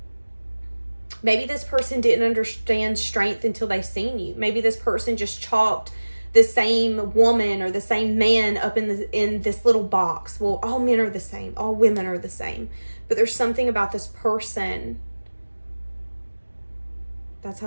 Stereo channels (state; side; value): inverted; both; correlation -1.00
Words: Maybe this person didn't understand strength until they seen you. Maybe this person just chalked the same woman or the same man up in this little box. Well, all men are the same. All women are the same. But there's something about this person. That's